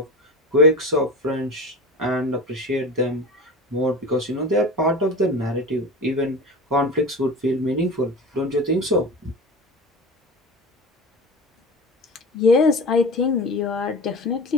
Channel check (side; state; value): both; normal; correlation 0.31